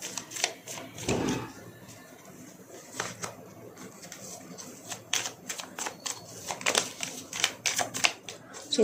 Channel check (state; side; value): identical; both; correlation 1.00